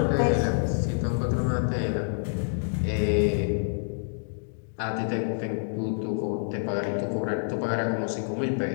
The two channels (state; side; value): silent; right; digital silence